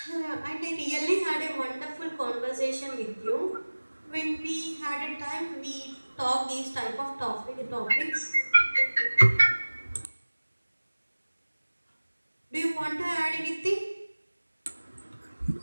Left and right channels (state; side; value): inverted; both; correlation -1.00